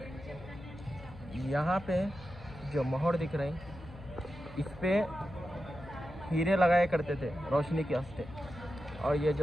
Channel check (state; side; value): noise; left; hum, 17 dB below the sound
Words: यहाँ पे जो मोहर दिख रहे हैं, इस पे हीरे लगाए करते थे रोशनी के वास्ते। और ये